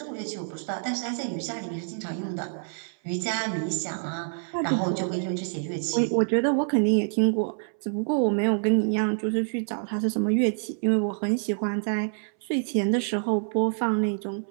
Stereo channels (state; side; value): silent; left; 60 dB below the other